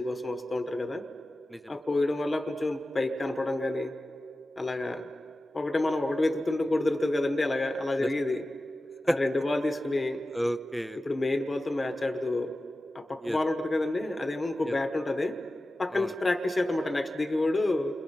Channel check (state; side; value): normal; both; correlation 0.94